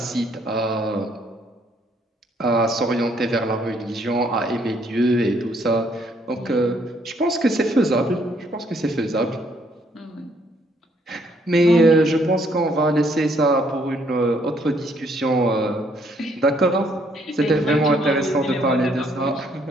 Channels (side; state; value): both; normal; correlation 0.68